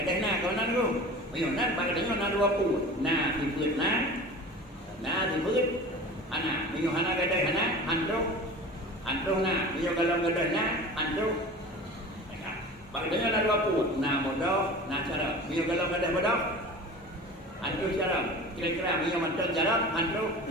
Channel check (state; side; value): normal; both; correlation 0.37